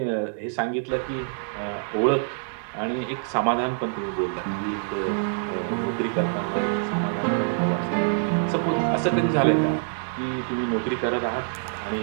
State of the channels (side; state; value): left; silent; 61 dB below the other